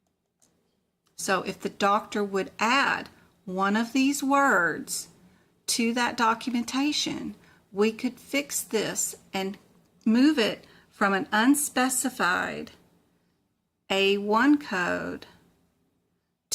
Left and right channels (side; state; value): both; identical; correlation 1.00